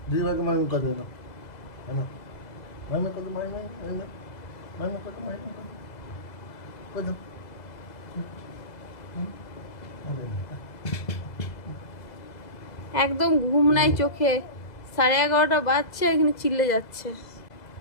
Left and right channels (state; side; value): late; right; 2.0 ms